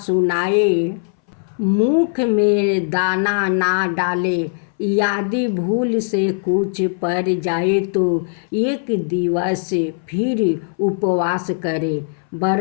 मुख में दाना ना डाले। यदि भूल से कुछ पड़ जाए तो एक दिवस फिर उपवास करे।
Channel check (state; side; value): silent; right; 62 dB below the other